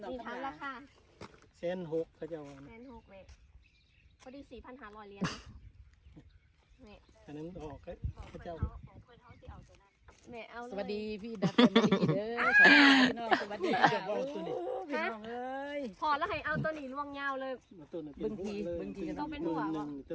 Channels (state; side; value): identical; both; correlation 1.00